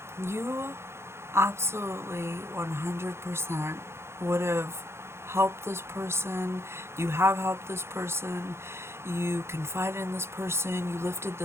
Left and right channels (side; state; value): left; late; 0.12 ms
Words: You absolutely 100% would have helped this person. You have helped this person. You confided in this person. You lifted